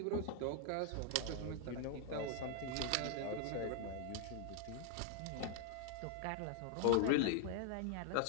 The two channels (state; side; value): different; both; correlation 0.00